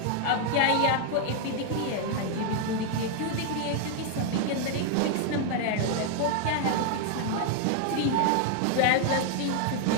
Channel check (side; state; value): both; different; correlation 0.00